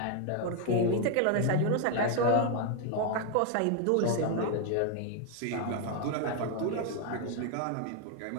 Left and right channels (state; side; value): different; both; correlation 0.00